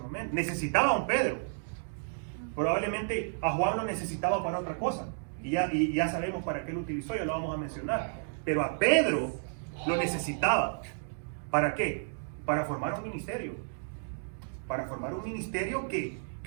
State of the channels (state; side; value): silent; left; digital silence